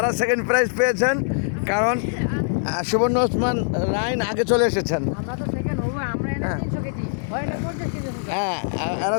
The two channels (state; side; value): silent; right; 64 dB below the other